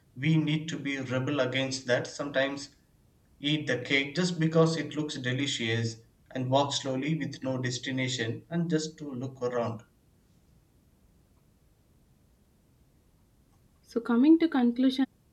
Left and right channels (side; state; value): both; identical; correlation 1.00